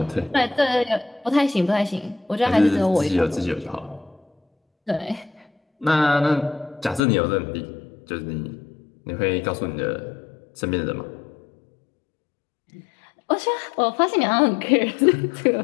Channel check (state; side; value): drops out; right; at 7.0 s